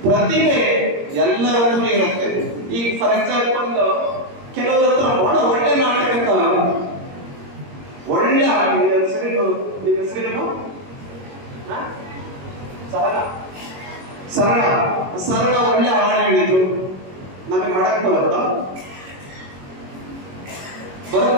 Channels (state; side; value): late; left; 21 ms